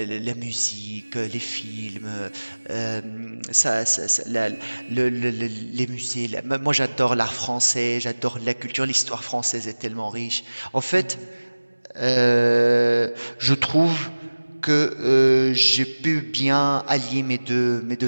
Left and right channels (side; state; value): both; inverted; correlation -1.00